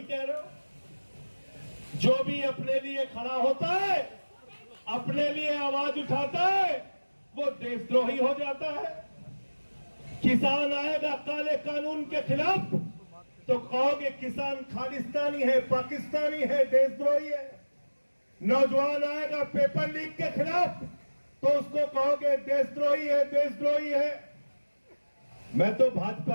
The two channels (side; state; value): both; inverted; correlation -1.00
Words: कह रहे हो? जो भी अपने लिए खड़ा होता है, अपने लिए आवाज उठाता है, वो देशद्रोही हो जाता है। किसान आएगा काले कानून के खिलाफ तो कहोगे किसान खालिस्तानी है, पाकिस्तानी है, देशद्रोही है। नौजवान आएगा पेपर लीक के खिलाफ तो उसको कहोगे देशद्रोही है, देशद्रोही है। मैं तो